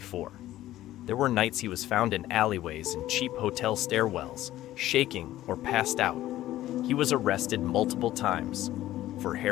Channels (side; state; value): right; quieter; 14.5 dB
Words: There were nights he was found in alleyways and cheap hotel stairwells, shaking or passed out. He was arrested multiple times, for